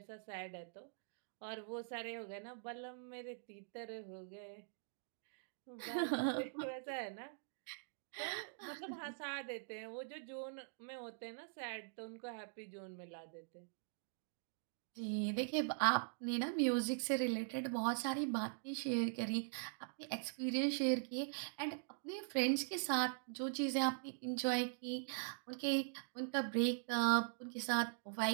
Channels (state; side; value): silent; left; digital silence